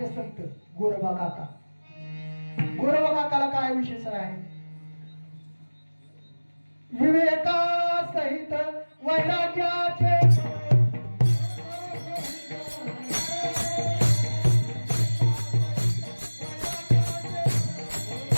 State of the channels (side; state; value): both; inverted; correlation -1.00